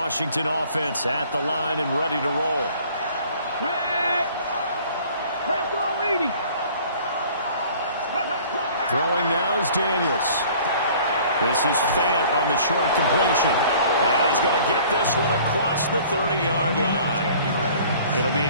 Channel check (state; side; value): inverted; both; correlation -0.51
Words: offense at the line and ready to roll. Throwing now is Daniels. This is Fant on the short completion. And he's going to get this one across the 30-yard line. It'll be